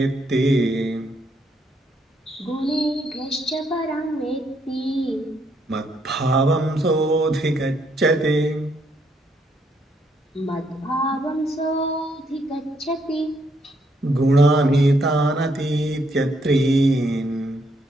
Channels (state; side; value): normal; both; correlation 0.73